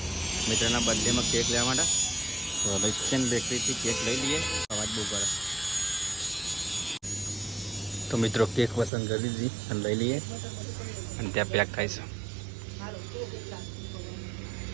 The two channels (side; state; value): left; drops out; at 8.9 s